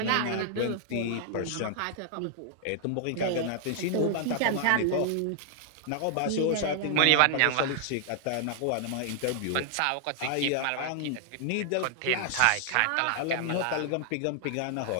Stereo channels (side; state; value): both; different; correlation -0.01